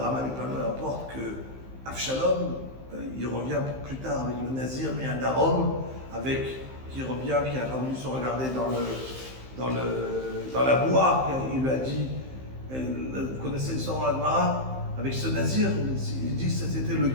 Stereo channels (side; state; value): left; late; 15 ms